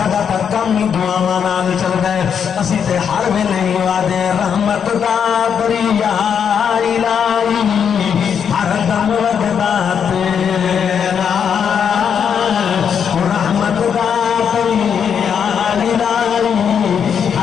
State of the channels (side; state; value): right; quieter; 7.5 dB